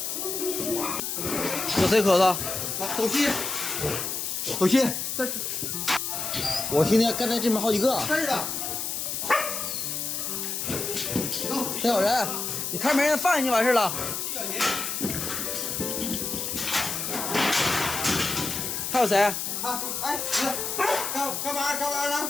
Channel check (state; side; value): noise; left; hiss, 3 dB below the sound